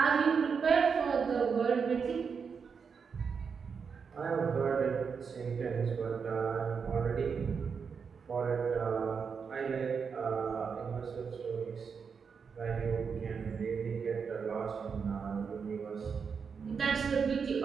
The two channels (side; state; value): left; quieter; 6.0 dB